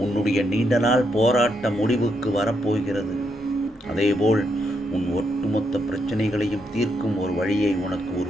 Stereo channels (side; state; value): both; normal; correlation 0.79